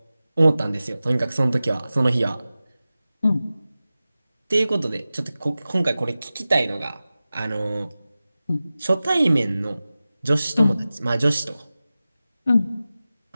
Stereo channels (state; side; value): inverted; both; correlation -0.96